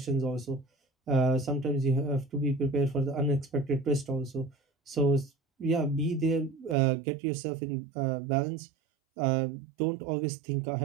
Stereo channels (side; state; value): left; drops out; at 6.8 s